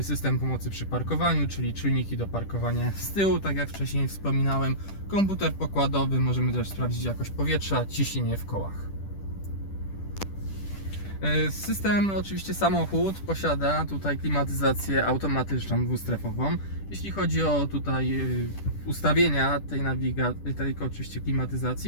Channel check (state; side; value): late; right; 10 ms